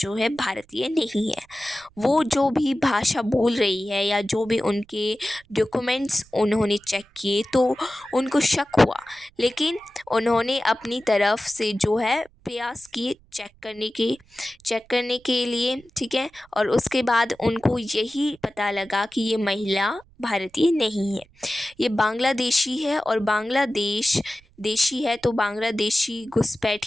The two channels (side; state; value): right; noise; rumble, 30 dB below the sound